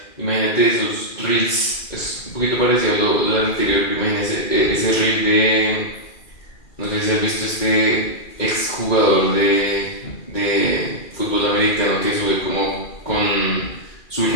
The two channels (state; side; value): late; right; 2.4 ms